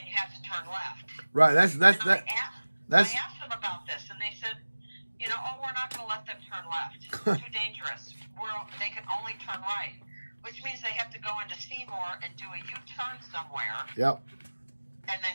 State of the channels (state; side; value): inverted; both; correlation -1.00